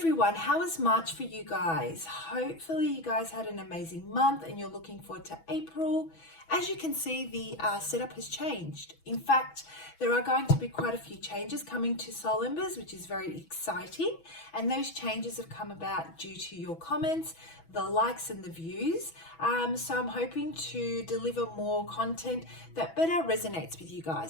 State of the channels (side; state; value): right; late; 6.1 ms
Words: How is March for you guys? Hopefully you guys had an amazing month and you're looking forward to April. As you can see, the setup has changed. In fact, there are going to be quite a few changes coming to Soul Embers, which is very exciting. And those changes have come about due to your comments, the likes and the views. So I'm hoping to deliver more content that better resonates with you